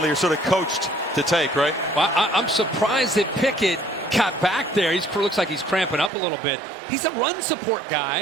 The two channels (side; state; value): left; drops out; at 6.1 s